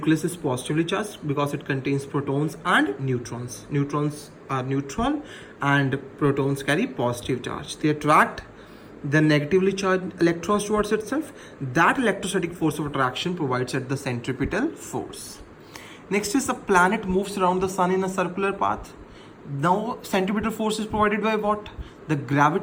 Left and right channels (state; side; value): identical; both; correlation 1.00